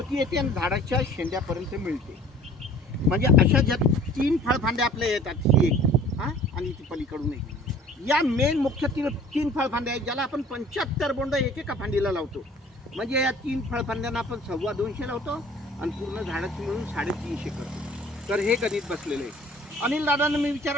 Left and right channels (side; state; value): both; normal; correlation 0.49